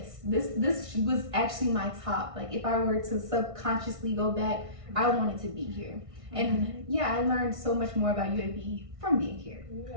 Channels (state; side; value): late; left; 1.6 ms